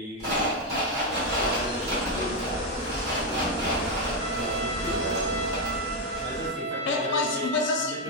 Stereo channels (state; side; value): normal; both; correlation 0.04